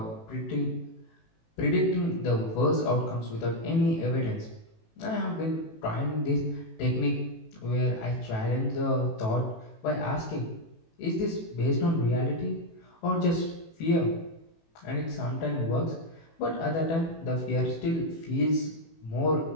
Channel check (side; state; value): right; late; 18 ms